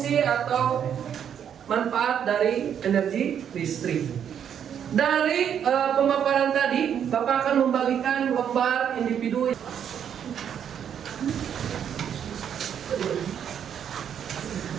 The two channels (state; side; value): quieter; left; 8.7 dB